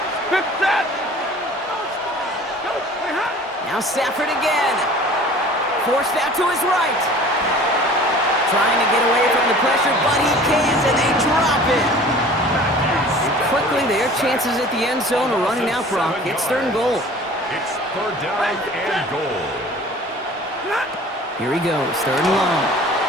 Now Stafford again. Forced out to his right. Trying to get away from the pressure, but he can't, and they drop it. Quickly, their chances at the end zone are running out, Brock. It's 3rd and goal. It's 3rd down and goal. Here he goes, 3rd and long.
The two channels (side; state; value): both; normal; correlation 0.45